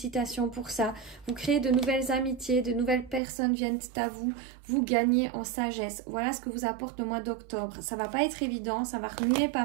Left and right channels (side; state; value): left; drops out; at 3.2 s